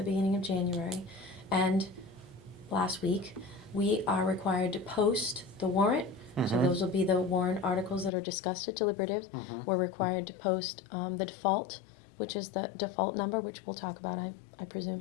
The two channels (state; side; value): drops out; right; at 8.1 s